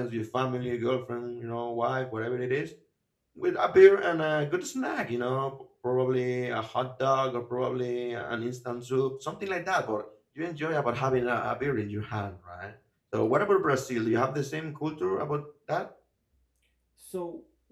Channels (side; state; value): both; identical; correlation 1.00